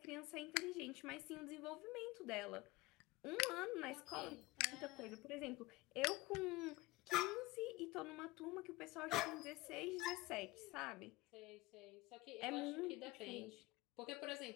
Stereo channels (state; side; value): quieter; right; 20.8 dB